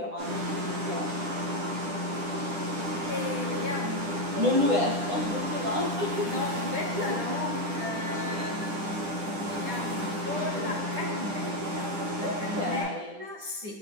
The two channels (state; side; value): late; left; 10 ms